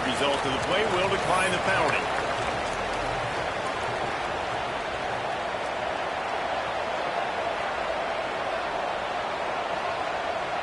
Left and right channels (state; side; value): identical; both; correlation 1.00